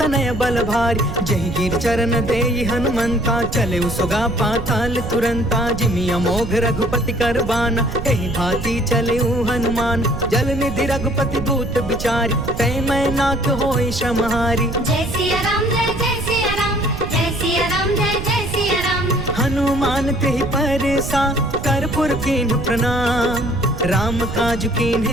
बल भारी। जही गिर चरण देई हनुमंता, चले सुगा पाताल तुरंता। जिमि अमोघ रघुपति कर बाना, एहि भांति चले हनुमान। जल निधि रघुपति दूत बिचारी, तै मैं नाथ होई श्रमहारी। जय सिया राम जय जय सिया राम, जय सिया राम जय जय सिया राम। हनुमान तेहि परसा, कर्पूर कीन्ह प्रणाम। राम काज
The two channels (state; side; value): noise; right; rumble, 6 dB below the sound